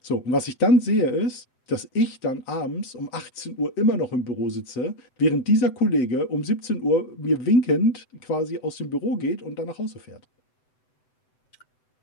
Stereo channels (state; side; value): late; right; 7.9 ms